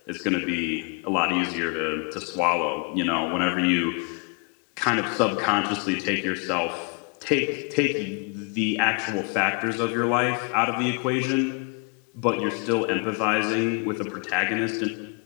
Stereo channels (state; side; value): quieter; right; 35.8 dB